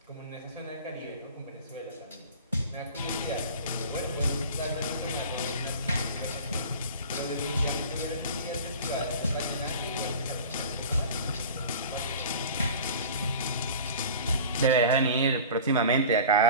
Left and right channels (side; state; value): both; inverted; correlation -0.38